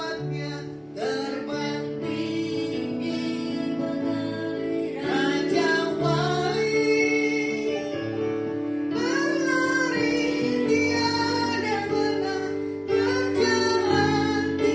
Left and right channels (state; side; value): identical; both; correlation 1.00